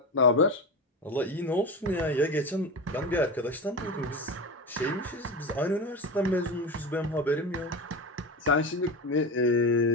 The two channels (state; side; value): normal; both; correlation 0.23